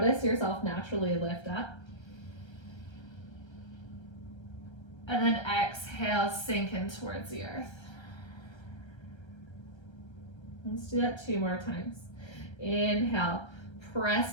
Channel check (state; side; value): late; right; 1.3 ms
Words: yourself naturally lift up. And then exhale, sink in towards the earth. Let's do that 2 more times. Inhale,